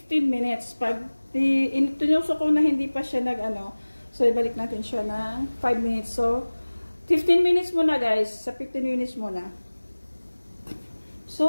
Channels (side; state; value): both; inverted; correlation -1.00